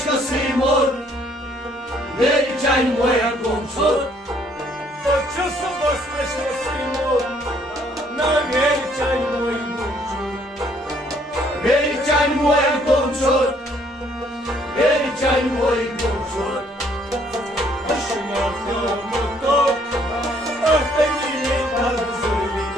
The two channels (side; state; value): both; normal; correlation 0.65